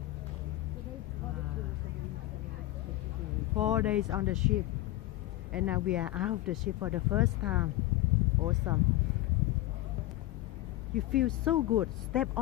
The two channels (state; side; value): quieter; right; 16.4 dB